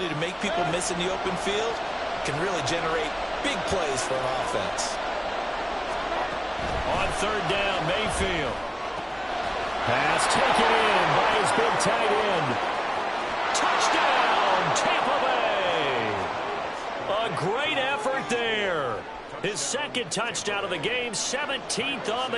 to make people miss in the open field can really generate big plays for an offense. On third down, Mayfield. Pass taken in by his big tight end. Touchdown, Tampa Bay. A great effort there. His second touchdown of the game, 17th on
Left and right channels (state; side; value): identical; both; correlation 1.00